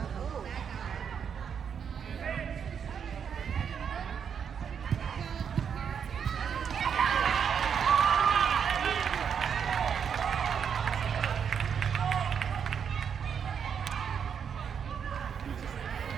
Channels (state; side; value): quieter; left; 7.3 dB